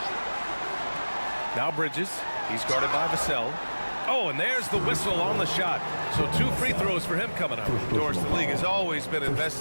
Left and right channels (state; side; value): inverted; both; correlation -1.00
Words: Now Bridges. He's guarded by Vassell. Oh, and there's the whistle on the shot. So 2 free throws for him coming up. Doris, the league has always been